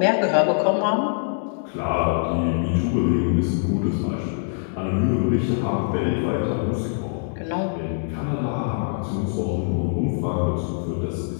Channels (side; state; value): right; silent; digital silence